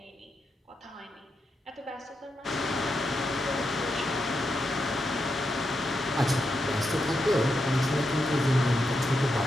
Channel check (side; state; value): both; normal; correlation 0.85